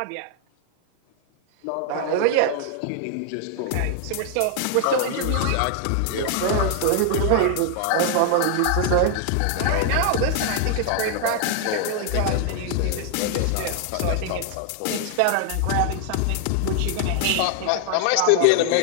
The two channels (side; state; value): both; different; correlation 0.00